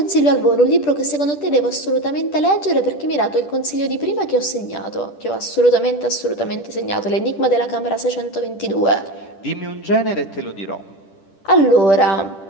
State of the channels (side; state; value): right; late; 10 ms